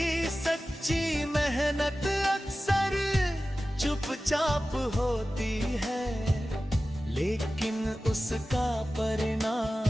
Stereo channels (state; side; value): normal; both; correlation 0.95